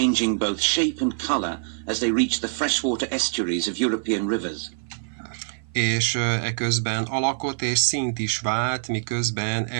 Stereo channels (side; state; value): left; silent; 56 dB below the other